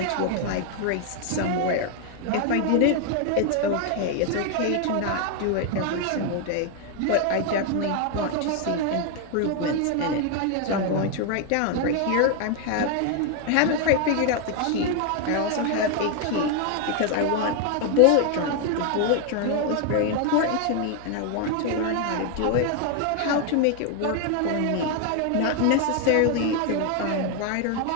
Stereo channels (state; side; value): different; both; correlation 0.01